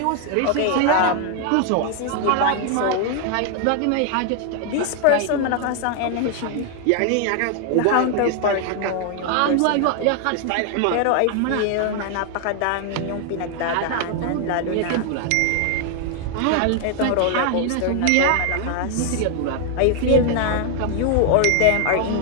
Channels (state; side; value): different; both; correlation 0.00